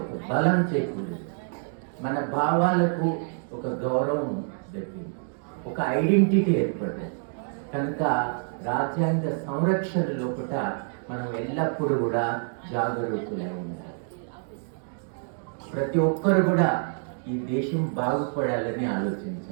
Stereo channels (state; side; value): silent; left; 56 dB below the other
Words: ఒక బలం చేకూరింది. మన భావాలకు ఒక గౌరవం దక్కింది, ఒక ఐడెంటిటీ ఏర్పడింది. కనుక రాజ్యాంగ సంరక్షణ లోపల మనం ఎల్లప్పుడూ కూడా జాగరూకులై ఉండాలి. ప్రతి ఒక్కరు కూడా ఈ దేశం బాగుపడాలని